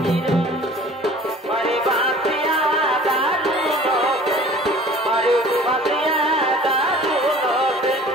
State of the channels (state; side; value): normal; both; correlation 0.47